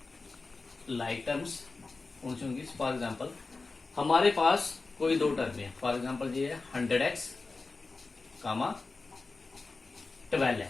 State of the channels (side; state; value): right; quieter; 3.8 dB